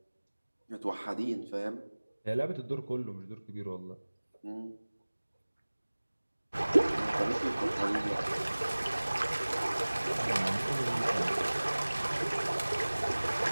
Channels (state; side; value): inverted; both; correlation -1.00